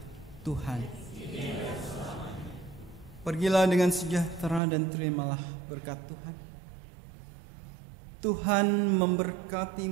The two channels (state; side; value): drops out; left; at 4.6 s